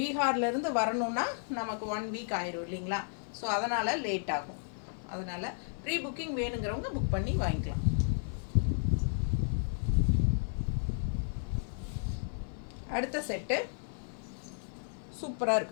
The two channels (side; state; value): right; silent; 56 dB below the other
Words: வரணுன்னா நமக்கு 1 வீக் ஆயிரும் இல்லைங்களா? ஸோ அதனால் லேட் ஆகும். அதனால் ப்ரீ புக்கிங் வேணுங்கிறவங்க புக் பண்ணி வாங்கிக்கலாம். அடுத்த செட்டு சூப்பராக